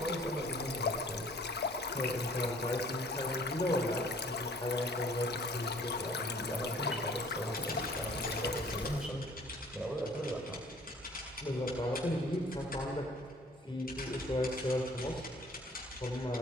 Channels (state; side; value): normal; both; correlation 0.54